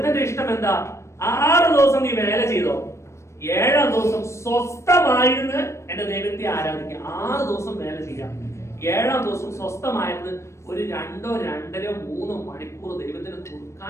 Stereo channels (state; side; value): late; right; 0.13 ms